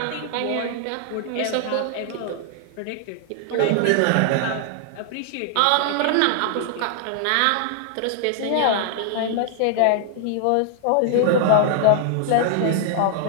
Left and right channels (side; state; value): both; different; correlation 0.00